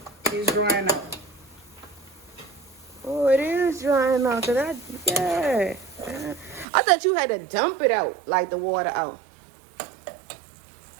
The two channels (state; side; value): drops out; left; at 6.7 s